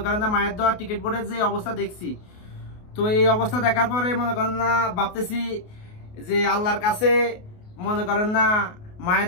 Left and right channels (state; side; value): late; right; 28 ms